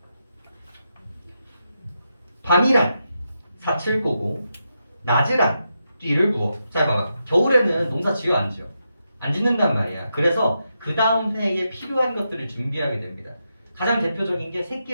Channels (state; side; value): inverted; both; correlation -0.85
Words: 밤이란 사칠 보고 낮이란 띠를 부어. 잘 봐봐. 겨울에는 농사 지어 안 지어? 안 짓는단 말이야. 그래서 그 다음 해에 필요한 것들을 준비하게 됩니다. 가장 대표적인 게